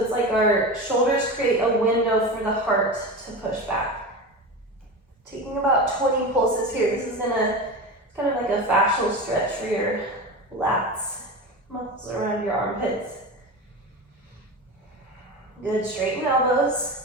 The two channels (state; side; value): normal; both; correlation 0.26